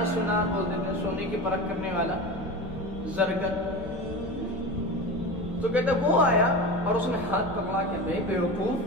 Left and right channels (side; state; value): left; noise; hum, 17 dB below the sound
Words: سنار بول دیتے ہیں، سونے کی پرکھ کرنے والا، زرگر، تو کہتے وہ آیا اور اس نے ہاتھ پکڑا کہ بے بیوقوف